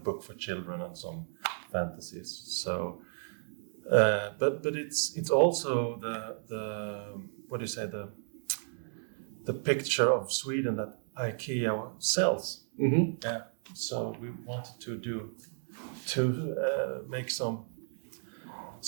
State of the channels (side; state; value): left; silent; 56 dB below the other